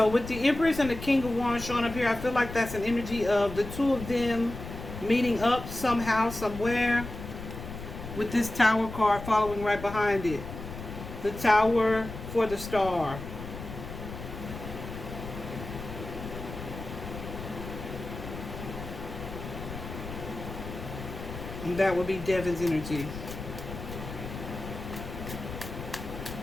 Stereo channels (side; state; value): left; noise; rumble, 10 dB below the sound